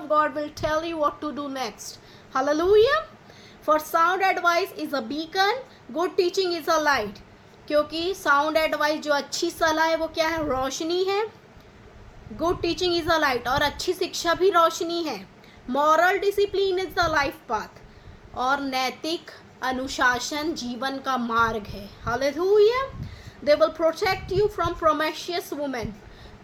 God will tell you what to do next. Hallelujah. For sound advice is a beacon. Good teaching is a light. क्योंकि sound advice जो अच्छी सलाह है वो क्या है? रोशनी है। Good teaching is a light. और अच्छी शिक्षा भी रोशनी है। Moral discipline is the life path, और नैतिक अनुशासन जीवन का मार्ग है। Hallelujah. They will protect you from promiscuous women,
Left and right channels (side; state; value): both; identical; correlation 1.00